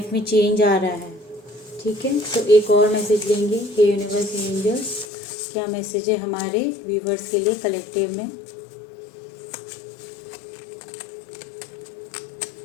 में चेंज आ रहा है। ठीक है, तो एक और मैसेज लेंगे। हे यूनिवर्स, हे एंजल्स, क्या मैसेज है हमारे व्यूवर्स के लिए कलेक्टिव में।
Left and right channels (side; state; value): right; drops out; at 5.1 s